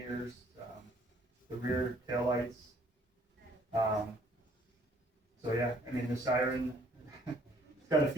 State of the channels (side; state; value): both; normal; correlation 0.61